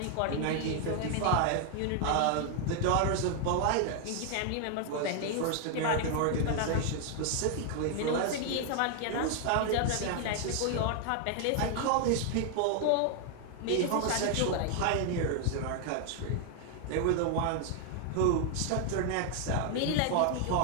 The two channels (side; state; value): both; different; correlation 0.00